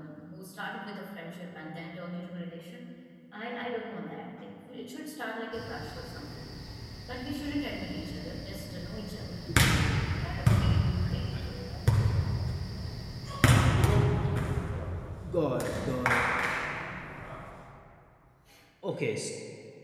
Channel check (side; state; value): both; identical; correlation 1.00